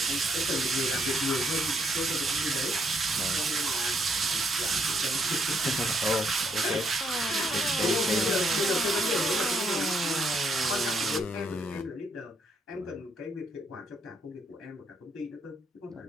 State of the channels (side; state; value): both; normal; correlation 0.73